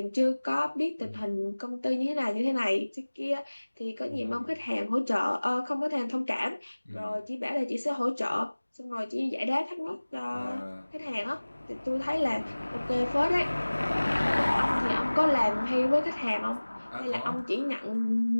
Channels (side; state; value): both; inverted; correlation -1.00